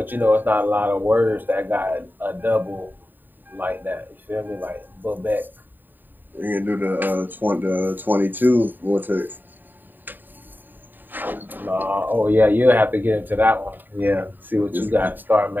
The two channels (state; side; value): late; left; 0.091 ms